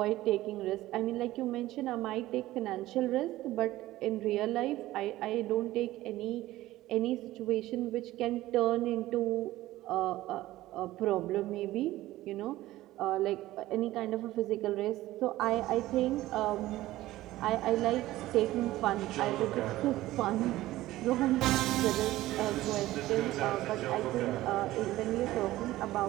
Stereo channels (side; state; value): left; quieter; 16.2 dB